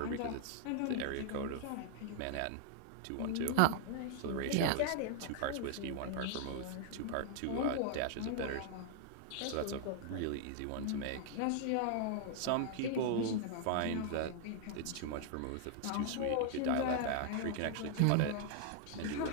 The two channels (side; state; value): both; different; correlation 0.00